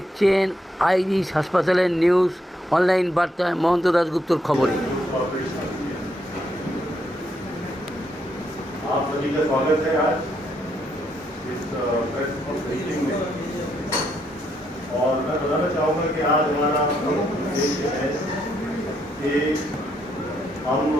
আইরিশ হাসপাতালের নিউজ অনলাইন বার্তায় মহন্ত দাশগুপ্তর খবরে। आप सभी का स्वागत है आज इस प्रेस ब्रीफिंग में। और मैं बताना चाहूँगा कि आज हमारा उद्देश्य है कि हम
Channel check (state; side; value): normal; both; correlation 0.76